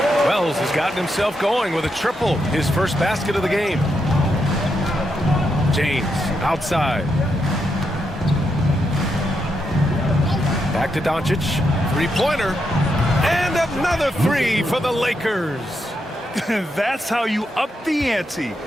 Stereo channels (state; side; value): normal; both; correlation 0.82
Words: Wells has gotten himself going with a triple. His first basket of the game. James outside. Back to Doncic. 3-pointer. And another 3 for the Lakers. That's how you up the ante.